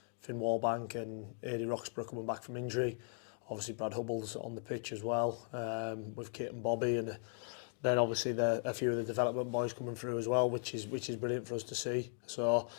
Finn Wallbank and Adi Roxburgh coming back from injury. Obviously Brad Hubble's on the pitch as well, with Kate and Bobby, and then obviously a few of the development boys coming through as well, which is brilliant for us to see. So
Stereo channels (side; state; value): right; silent; 53 dB below the other